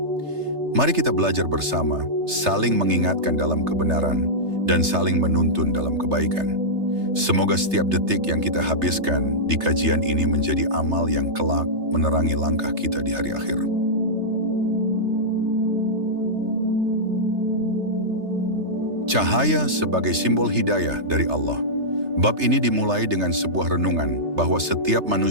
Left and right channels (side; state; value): left; late; 3.3 ms